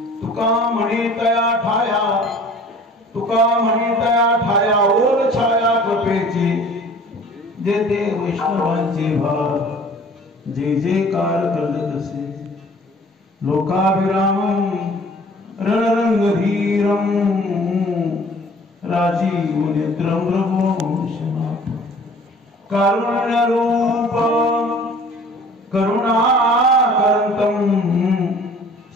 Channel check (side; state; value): both; normal; correlation 0.50